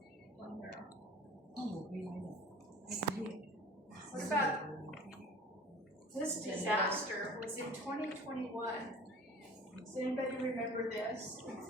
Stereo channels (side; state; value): both; normal; correlation 0.43